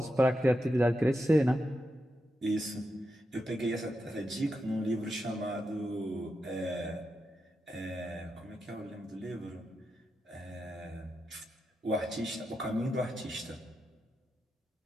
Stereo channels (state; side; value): normal; both; correlation 0.87